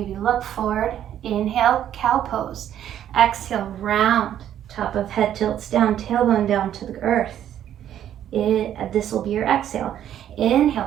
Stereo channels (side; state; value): left; quieter; 10.7 dB